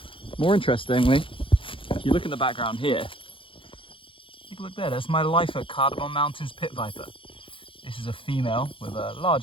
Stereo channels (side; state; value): right; late; 0.25 ms